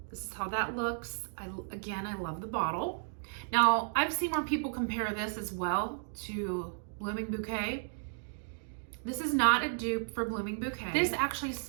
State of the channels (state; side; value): silent; left; digital silence